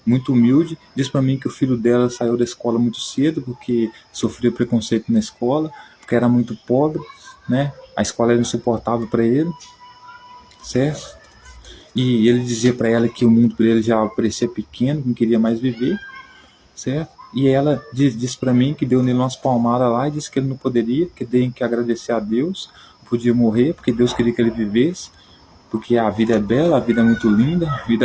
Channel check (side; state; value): both; identical; correlation 1.00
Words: muito humilde, diz para mim que o filho dela saiu da escola muito cedo porque sofreu preconceito na escola, porque era muito pobre, né? A escola era insuportável para ele, certo? E ele dizia para ela que o mundo para ele já parecia pequeno, que não queria mais viver, certo? E ela disse para mim que deu nele umas palmadas lá e disse que ele não poderia, que tem que agradecer a Deus, podia morrer porque Deus queria que ele vivesse, porque a vida é bela, a vida é muito linda, a